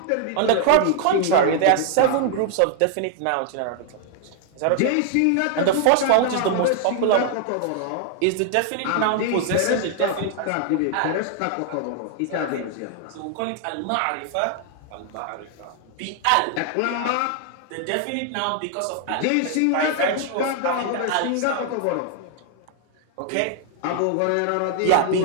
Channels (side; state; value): both; different; correlation 0.00